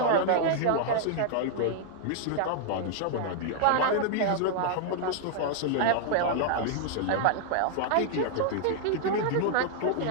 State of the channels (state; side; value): different; both; correlation 0.00